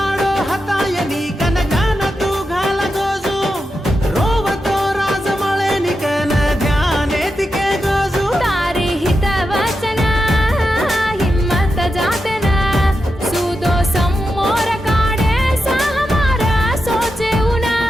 हतायनी कनकान तू घाल गोजू रोवतो राजमळे निकन ध्याने तिके गोजू तारी हित वचन हिम्मत जाते ना सुदो सम्मोर काढे सहमारा सोचे उना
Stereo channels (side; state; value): both; normal; correlation 0.88